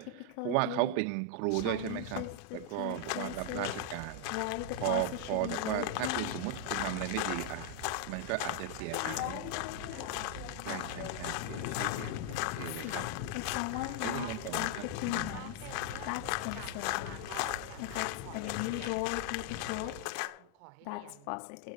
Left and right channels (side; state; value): both; different; correlation 0.00